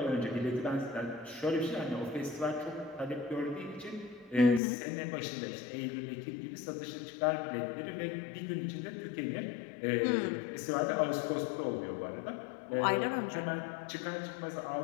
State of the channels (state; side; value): drops out; right; at 4.6 s